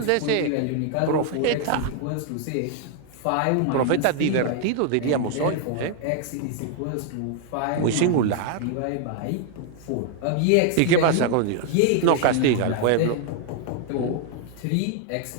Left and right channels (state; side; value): different; both; correlation 0.00